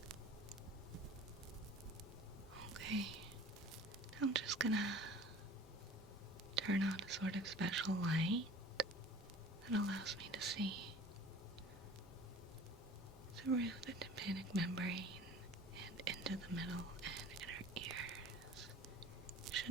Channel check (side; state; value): both; normal; correlation 0.45